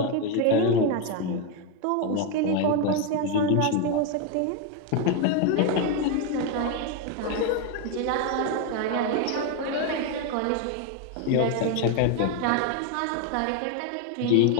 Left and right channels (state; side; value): different; both; correlation 0.01